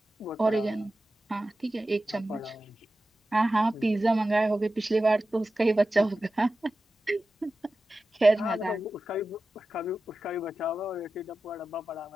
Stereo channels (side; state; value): both; normal; correlation 0.94